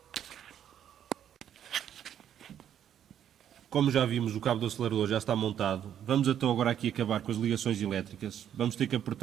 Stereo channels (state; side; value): quieter; left; 9.8 dB